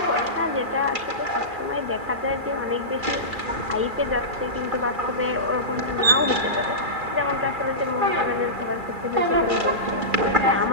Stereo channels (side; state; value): left; late; 2.4 ms